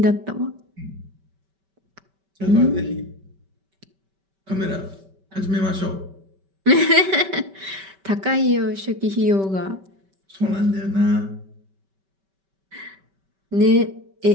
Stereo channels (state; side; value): late; left; 5.2 ms